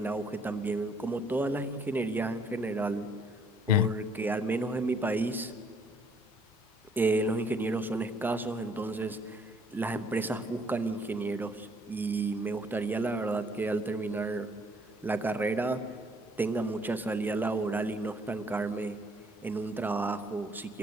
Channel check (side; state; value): both; normal; correlation 0.63